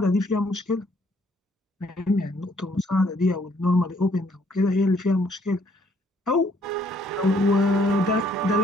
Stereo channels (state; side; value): normal; both; correlation 0.66